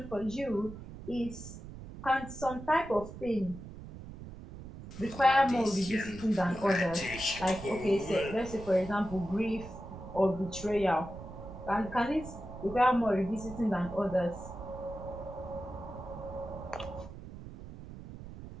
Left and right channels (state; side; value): noise; right; rumble, 13 dB below the sound